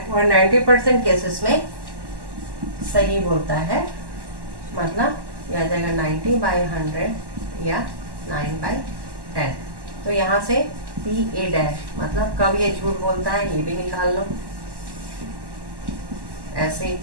वो 90% केसेस में सही बोलता है, मतलब ये आ जाएगा 90/100 या 9/10। तो यहाँ से पी ए डैश, मतलब कब ये झूठ बोलता है ये भी निकाल लो, ऐसे ही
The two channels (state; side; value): late; left; 1.1 ms